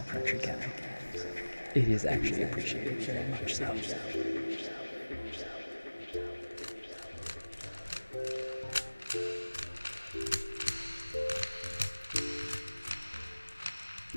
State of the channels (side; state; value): both; inverted; correlation -1.00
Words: Crutcher Guy. It is actually appreciated very much so.